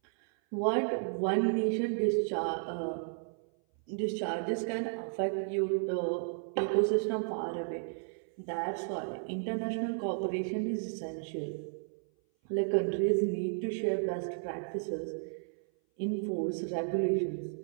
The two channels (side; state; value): left; silent; 56 dB below the other